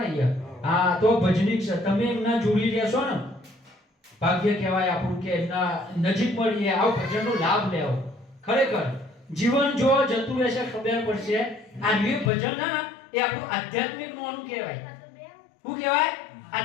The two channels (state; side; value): drops out; right; at 12.3 s